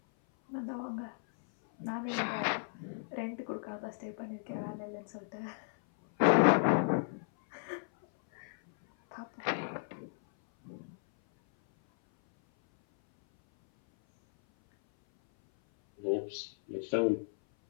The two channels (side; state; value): right; silent; 55 dB below the other